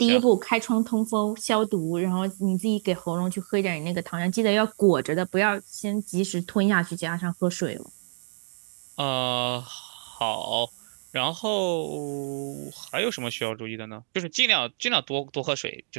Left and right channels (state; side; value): silent; left; digital silence